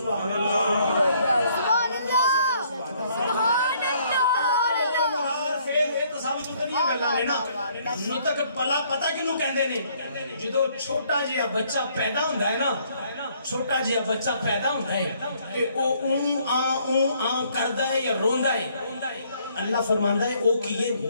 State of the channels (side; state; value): both; inverted; correlation -0.65